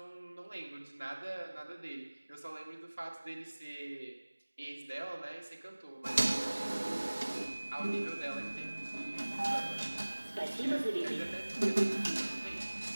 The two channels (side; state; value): both; inverted; correlation -1.00